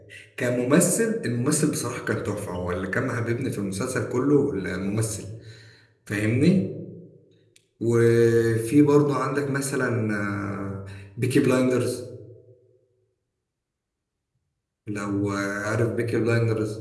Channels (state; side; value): identical; both; correlation 1.00